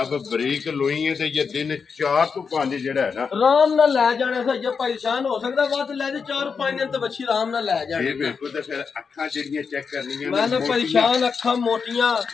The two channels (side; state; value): right; quieter; 5.7 dB